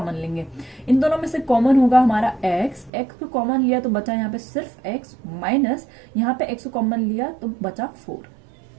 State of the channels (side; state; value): left; drops out; at 2.9 s